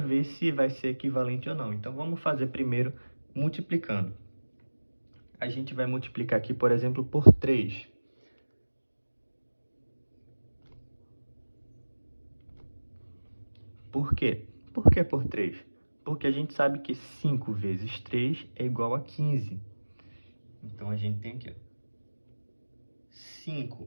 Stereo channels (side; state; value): both; inverted; correlation -1.00